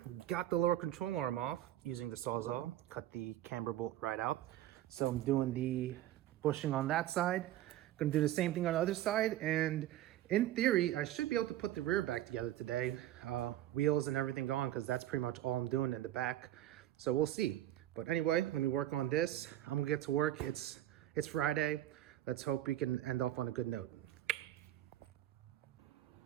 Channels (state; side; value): quieter; left; 13.6 dB